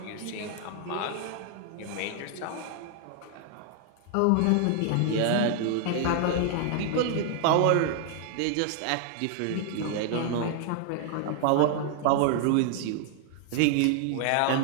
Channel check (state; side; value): different; both; correlation 0.00